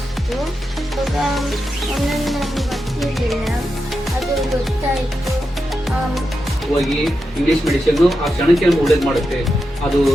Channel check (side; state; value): both; normal; correlation 0.88